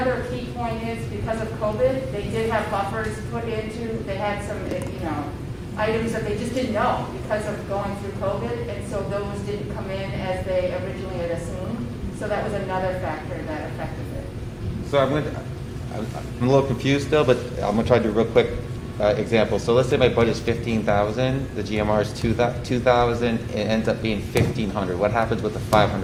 key point is, because of COVID, they did have buffers put into, they had some, items that they just didn't know because of going through COVID, and so those didn't come in as they originally had assumed. So that was another factor that affected it. So I'm a little confused still, but I'm gonna try to do a real quick example. So let's say my budget's 15,000, the GMR is 2,000, it ends up being 1,500. What happens with the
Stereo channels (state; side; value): identical; both; correlation 1.00